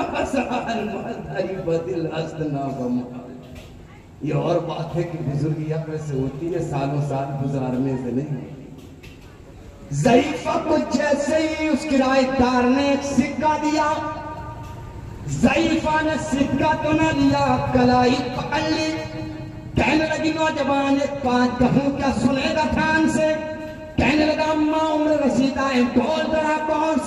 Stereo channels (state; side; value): identical; both; correlation 1.00